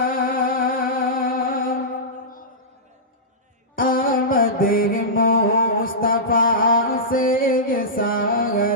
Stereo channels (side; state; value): both; normal; correlation -0.15